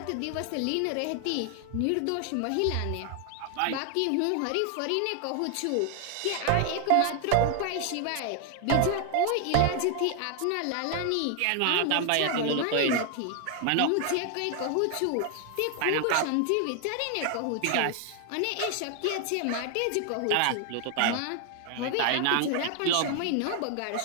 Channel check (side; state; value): both; different; correlation 0.00